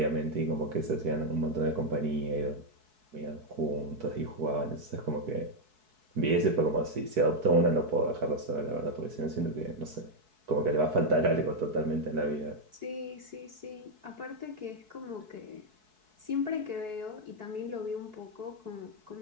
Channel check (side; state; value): left; late; 4.6 ms